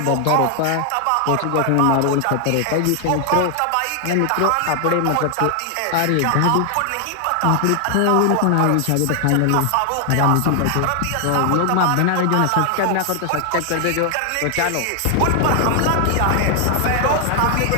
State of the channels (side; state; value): both; different; correlation 0.00